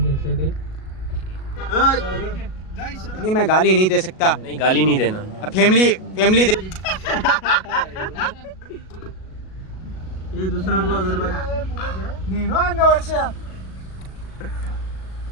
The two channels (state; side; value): late; right; 37 ms